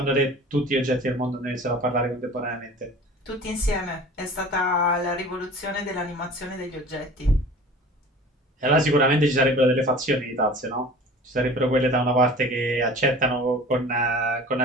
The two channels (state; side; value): normal; both; correlation 0.42